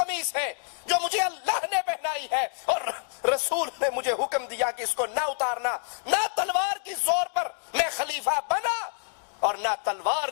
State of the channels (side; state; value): right; silent; digital silence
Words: ہے جو مجھے اللہ نے پہنائی ہے اور رسول نے مجھے حکم دیا کہ اس کو نہ اتارنا. نہ تلوار کی زور پر میں خلیفہ بنا اور نہ تلوار